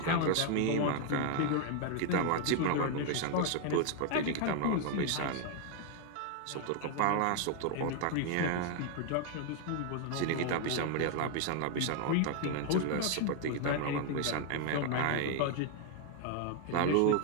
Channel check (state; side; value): different; both; correlation 0.00